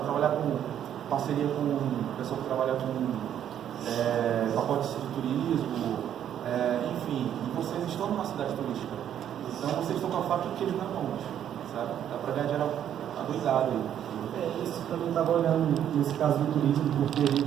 com parceria com o pessoal que trabalha com pacotes de turismo, enfim, e vocês estão numa cidade turística. Então vocês estão com a faca e o queijo na mão, sabe? Dá pra ganhar dinheiro adoidado aí. Isso também estava olhando nesse caso do turismo, porque a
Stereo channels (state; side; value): quieter; left; 10.1 dB